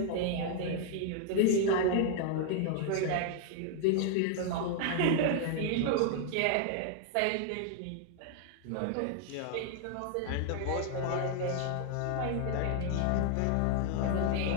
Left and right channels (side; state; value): both; different; correlation 0.00